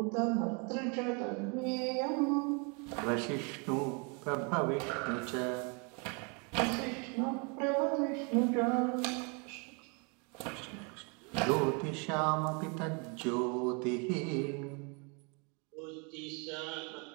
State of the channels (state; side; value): quieter; left; 33.9 dB